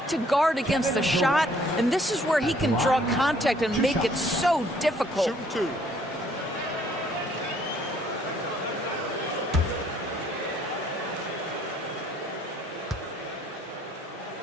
to guard against the shot, and this is where he can draw contact and make it so difficult. Shooting two.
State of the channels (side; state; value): both; normal; correlation 0.63